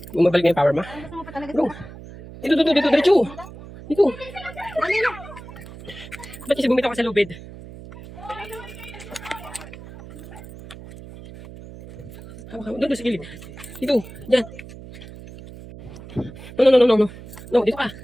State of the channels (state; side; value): noise; right; hum, 15 dB below the sound